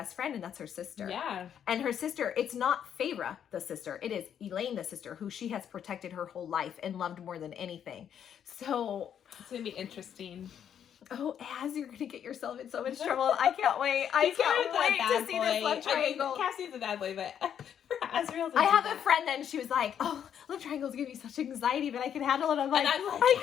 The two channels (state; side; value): quieter; right; 8.9 dB